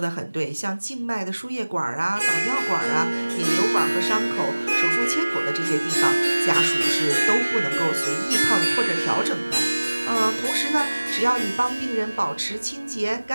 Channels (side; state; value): both; inverted; correlation -1.00